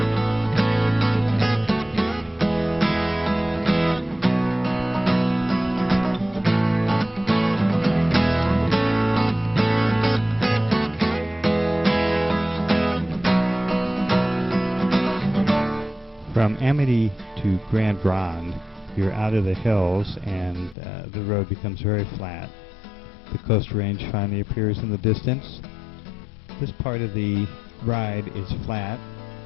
From Amity to Grand Ronde, you're out of the hills and the road becomes very flat. The Coast Range finally appears in the distance. This part of the ride is flat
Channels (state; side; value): drops out; right; at 20.8 s